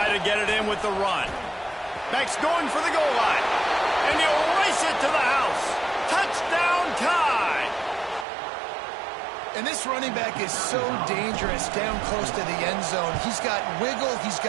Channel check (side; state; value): left; drops out; at 8.2 s